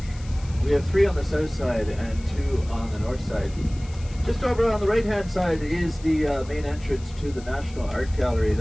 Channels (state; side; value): noise; left; hiss, 22 dB below the sound